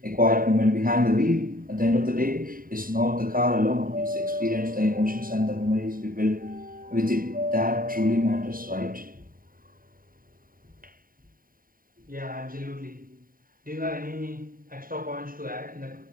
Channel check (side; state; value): left; late; 0.41 ms